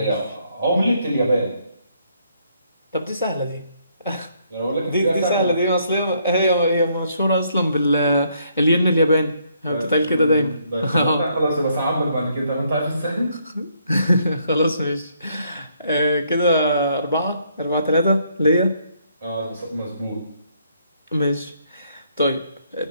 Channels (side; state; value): both; inverted; correlation -0.71